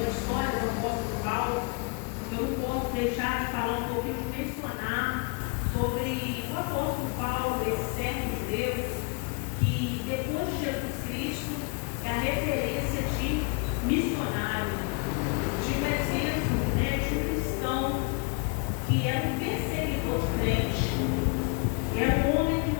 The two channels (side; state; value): right; quieter; 32.9 dB